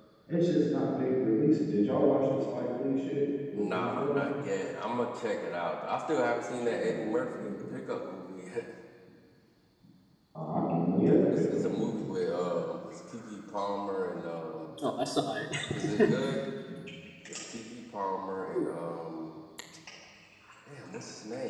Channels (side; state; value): both; identical; correlation 1.00